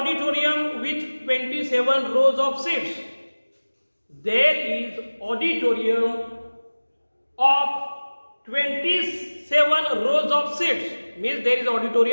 with 27 rows of seats. There is auditorium of 27 rows of seats, means there is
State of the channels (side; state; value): both; inverted; correlation -1.00